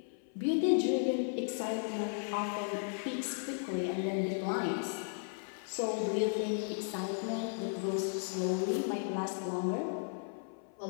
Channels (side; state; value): right; silent; 54 dB below the other